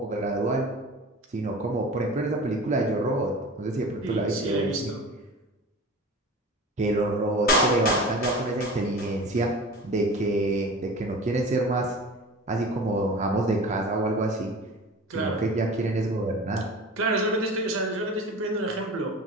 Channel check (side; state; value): both; normal; correlation 0.36